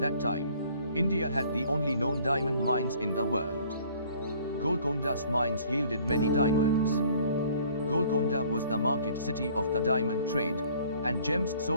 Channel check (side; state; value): both; inverted; correlation -0.55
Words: that time, India had the only known diamond mines in the world. Golconda's mines yielded many diamonds. Golconda was the market city of the diamond trade, and gems